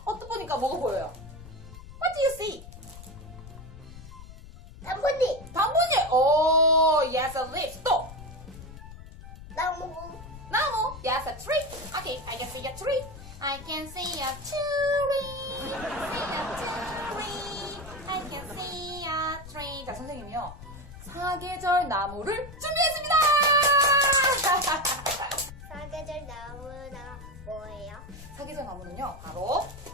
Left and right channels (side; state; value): left; noise; rumble, 15 dB below the sound